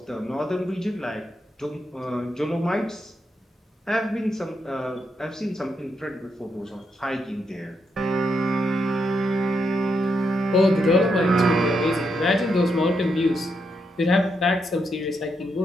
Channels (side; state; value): both; normal; correlation 0.81